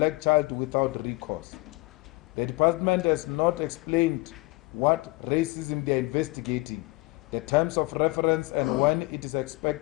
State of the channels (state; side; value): quieter; right; 23.2 dB